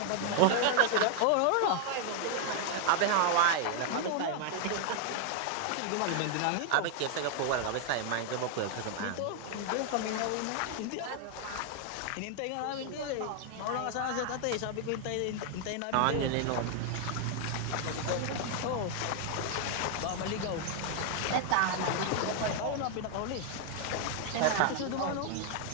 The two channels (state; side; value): different; both; correlation 0.00